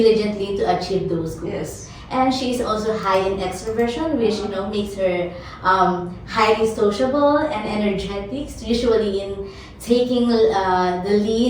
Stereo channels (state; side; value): identical; both; correlation 1.00